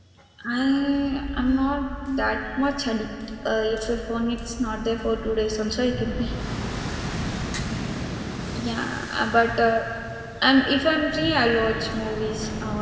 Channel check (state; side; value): identical; both; correlation 1.00